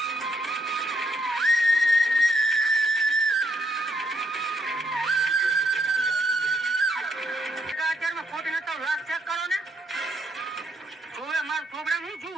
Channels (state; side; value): normal; both; correlation 0.73